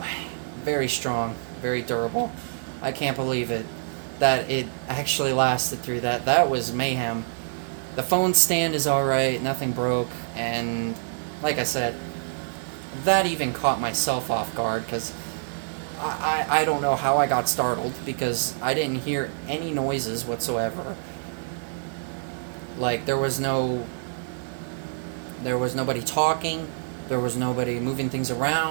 very strong, very durable. I can't believe it, that it actually lasted through that. That was mayhem. The phone stand is alright, nothing broke, and like I said, that even caught myself off guard, because I don't know how I got startled, because I didn't hear any noises whatsoever. Like, there was nobody talking, there was nobody moving things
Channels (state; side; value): silent; left; 61 dB below the other